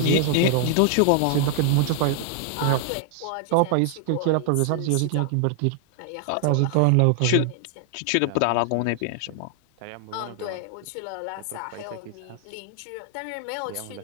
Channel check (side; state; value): both; different; correlation 0.00